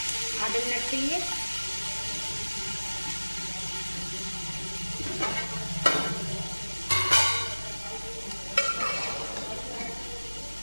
आधे मिनट के लिए।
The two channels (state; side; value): inverted; both; correlation -1.00